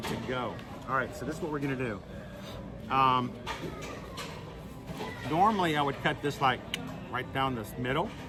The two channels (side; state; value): both; identical; correlation 1.00